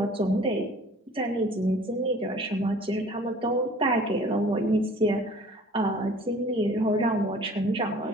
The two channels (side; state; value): both; normal; correlation 0.49